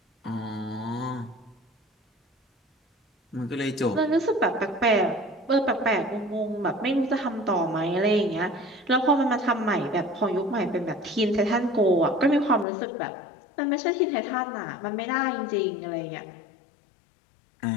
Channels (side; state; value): right; drops out; at 12.7 s